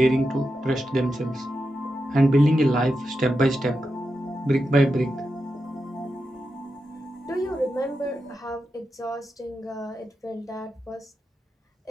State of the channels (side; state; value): both; normal; correlation 0.88